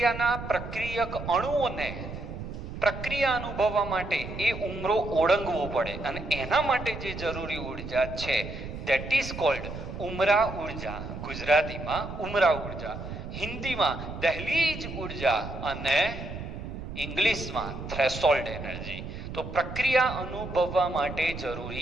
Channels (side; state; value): right; noise; rumble, 8 dB below the sound